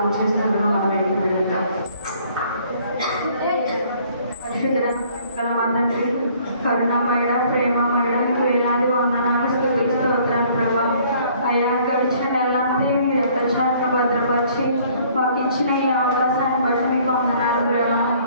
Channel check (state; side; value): inverted; both; correlation -0.59